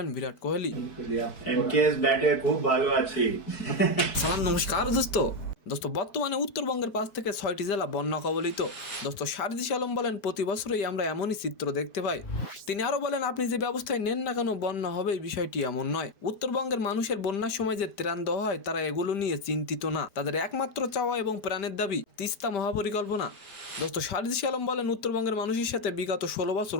বিরাট কোহলি। এমকেএস ব্যাটে খুব ভালো আছি। সালাম, নমস্কার দোস্ত। বর্তমানে উত্তরবঙ্গের 5 থেকে 6টি জেলা বন্যা কবলিত। দোস্ত, সারজিস আলম বলেন প্রতি বছরই আমরা এমনই চিত্র দেখতে পাই। তিনি আরো বলেন, আপনি যে ব্যবস্থায় নেন না কেন বন্যা হবে এই বিষয়টি এমন নয়। উত্তরবঙ্গের মানুষের বন্যার সময় যে ত্রাণ দেওয়া হয় তারা এগুলো নিয়ে চিন্তিত না। তাদের একমাত্র চাওয়া এবং প্রাণের দাবি তিস্তা মহাপরিকল্পনা। দোস্ত, সারজিস আলম বলেন উত্তরবঙ্গের মানুষের সাথে বিগত 16 বছর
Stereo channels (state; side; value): late; right; 4.6 ms